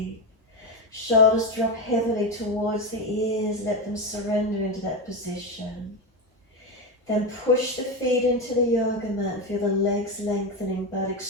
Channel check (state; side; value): normal; both; correlation 0.14